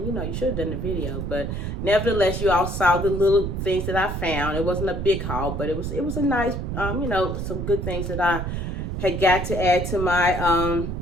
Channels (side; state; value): right; noise; rumble, 3 dB below the sound